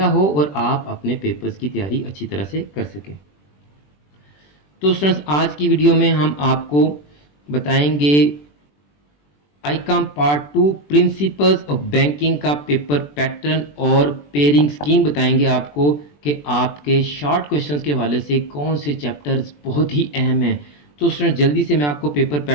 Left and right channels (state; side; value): late; right; 20 ms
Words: ہو اور آپ اپنے پیپرز کی تیاری اچھی طرح سے کر سکیں۔ تو اسٹوڈنٹس آج کی ویڈیو میں ہم آپ کو بتائیں گے آئیکام پارٹ 2 پرنسپلز آف بینکنگ کا پیپر پیٹرن اور پیئرنگ سکیم بتائیں گے آپ کو کہ آپ کے شارٹ کوشچنز کے حوالے سے کون سے چیپٹرز بہت ہی اہم ہیں۔ تو اسٹوڈنٹ جلدی سے میں آپ کو پیپر